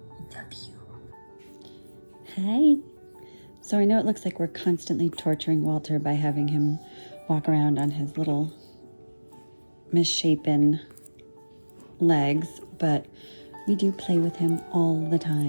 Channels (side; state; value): both; inverted; correlation -1.00